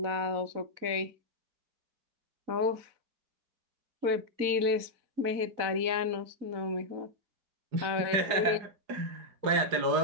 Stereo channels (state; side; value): late; left; 4.1 ms